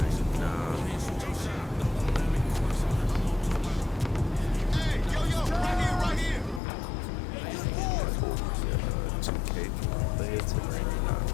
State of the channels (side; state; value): right; drops out; at 6.6 s